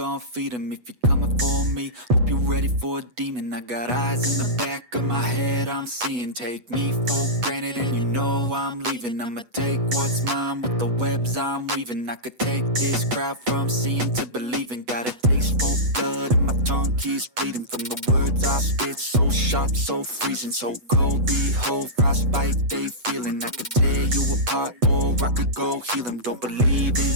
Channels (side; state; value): left; late; 8.2 ms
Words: feed them. If you're coming for me, hope you're ready for a demon. I got eyes in the back of my head, I'm seeing. Take me for granted and you know I'm leaving. I'ma take what's mine with the webs I'm weaving. I could take this crowd from seeing to believing. Got a taste for blood and my tongue keeps bleeding from the words I spit. So sharp, so freezing, so cold. Behold, frostbite they feeling. I could tear you apart or I could go heal them. Don't believe in